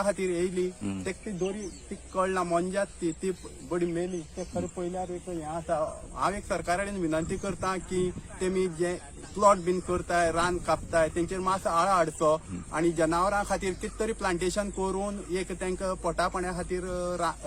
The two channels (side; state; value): both; identical; correlation 1.00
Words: खातीर येयली तेका ती दोरी ती कळना मोंजात ती बडी मेली ते खरें पयल्यार एक हें आसा हांव एक सरकारा कडेन विनंती करता की तेमी जे प्लॉट बीन करताय रान कापताय तेंचेर मातसो आळो हाडचो आनी जनावरां खातीर कितें तरी प्लांटेशन करून एक तांकां पोटा पाण्या खातीर